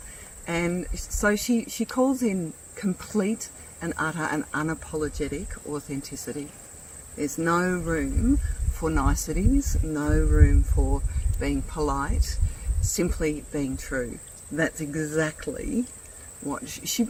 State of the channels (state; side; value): identical; both; correlation 1.00